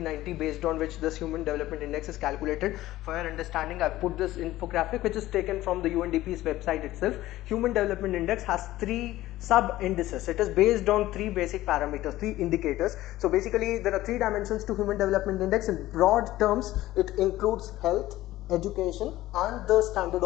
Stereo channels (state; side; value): quieter; right; 15.8 dB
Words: based on which this Human Development Index is calculated. For your understanding, I put this infographic which is taken from the UNDP's website itself. Human Development Index has 3 sub indices. It is based on 3 basic parameters, 3 indicators. So basically there are 3 dimensions to Human Development Index. In broad terms, it includes health, education and the standard